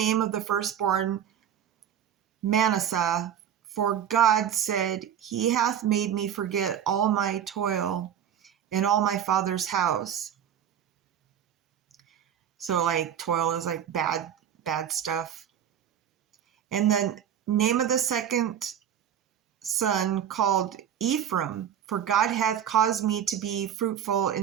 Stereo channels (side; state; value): left; quieter; 9.5 dB